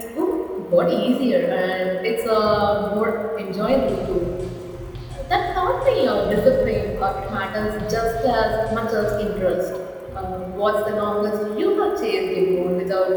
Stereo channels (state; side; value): identical; both; correlation 1.00